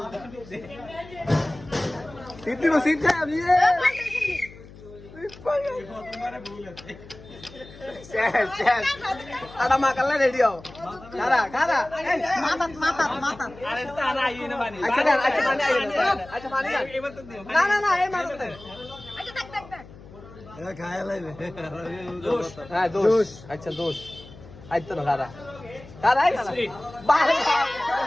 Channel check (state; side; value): noise; left; hum, 19 dB below the sound